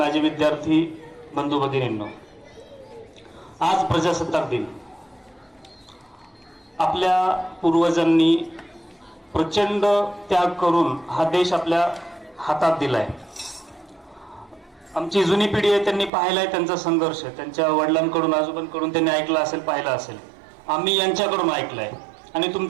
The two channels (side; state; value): left; drops out; at 16.1 s